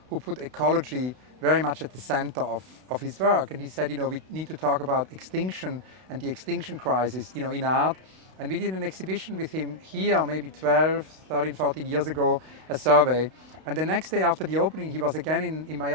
who put ecology very much at the center of his work. And he said, we need to talk about extinction and the extinction crisis, in art. And we did an exhibition with him here maybe 12, 13, 14 years ago, a survey. And the next day after the opening, he was again in my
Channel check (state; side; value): late; left; 32 ms